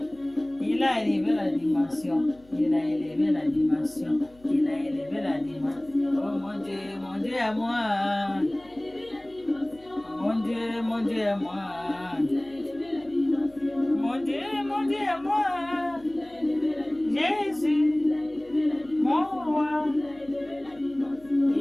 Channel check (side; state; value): left; noise; hum, 27 dB below the sound